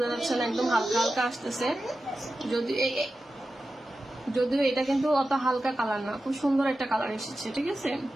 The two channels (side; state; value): both; normal; correlation 0.93